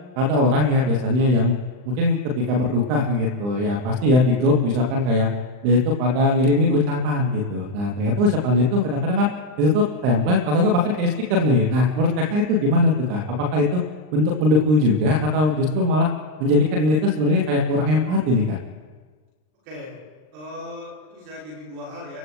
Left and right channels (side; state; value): left; late; 39 ms